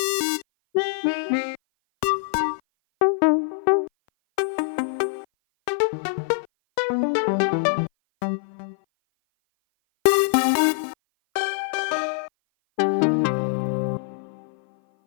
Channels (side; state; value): right; silent; 57 dB below the other